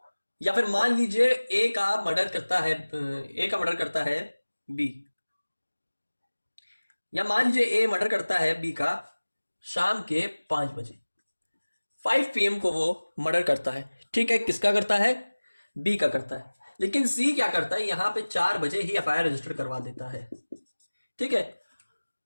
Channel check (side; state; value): both; inverted; correlation -1.00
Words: या फिर मान लीजिए ए का मर्डर करता है बी, या मान लीजिए ए मर्डर करता है बी का शाम के 5 बजे, 5 PM को वो मर्डर करता है, ठीक है। किसका करता है? बी का करता है। लेकिन सी क्या करता है, यहां पे 4 बजे ही एफआईआर रजिस्टर करवा देता है, ठीक है।